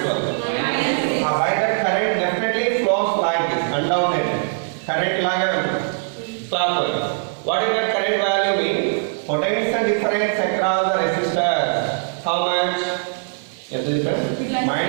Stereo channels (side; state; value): left; silent; digital silence